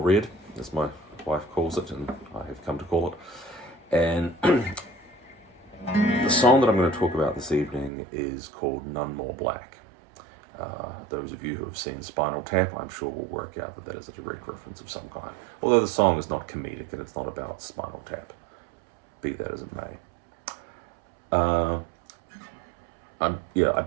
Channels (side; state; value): left; drops out; at 7.9 s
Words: as my wife calls it, and I have come to call it. And the song that I'm going to talk about this evening is called None More Black. Those of you who have seen Spinal Tap, I'm sure will work out that that is a direct reference of some kind. Although the song is not comedic and it's not about Spinal Tap, be that as it may. I